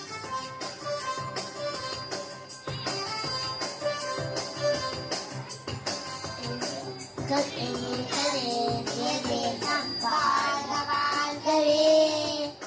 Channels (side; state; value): both; identical; correlation 1.00